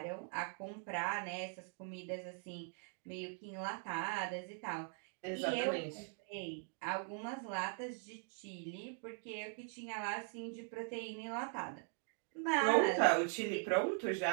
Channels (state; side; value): silent; left; 50 dB below the other